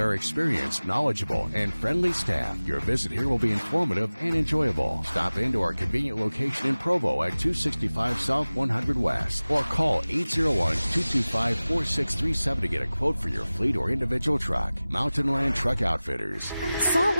experienced, knowledgeable, and friendly staff, your visit here will be informative and enjoyable. Stop into our convenient location in Provo at 265 South 100 West or call 801-225-4637 to get a quote for your fleet or individual truck. Mountain Land Truck Outfitters. Salt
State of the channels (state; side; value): inverted; both; correlation -0.98